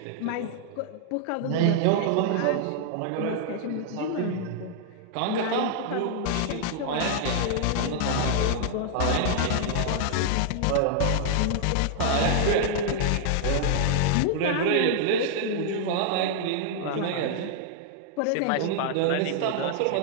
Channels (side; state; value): both; different; correlation -0.01